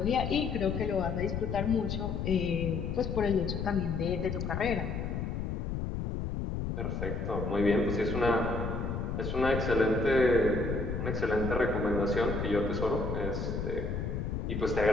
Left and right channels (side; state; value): left; noise; rumble, 3 dB below the sound